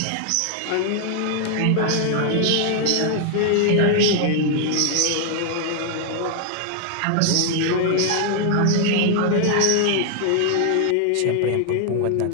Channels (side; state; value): both; different; correlation 0.00